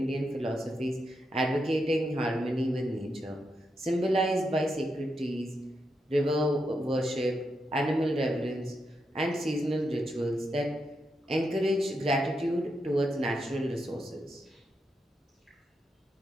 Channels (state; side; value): normal; both; correlation 0.84